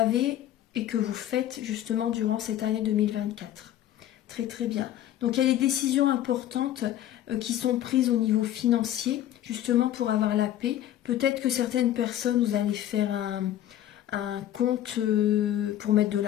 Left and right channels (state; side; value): quieter; right; 12.3 dB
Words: et que vous faites justement durant cette année 2024. Très très bien. Donc, il y a des décisions importantes qui sont prises au niveau financier justement pour avoir la paix. Peut-être que certaines personnes, vous allez faire un compte pour mettre de